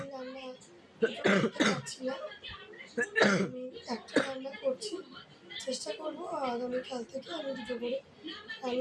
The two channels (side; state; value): both; identical; correlation 1.00